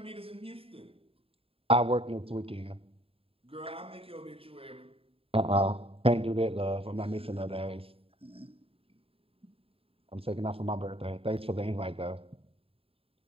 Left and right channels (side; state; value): left; late; 0.27 ms